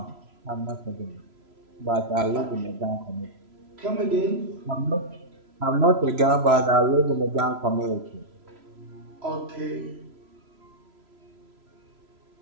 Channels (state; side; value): late; left; 3.0 ms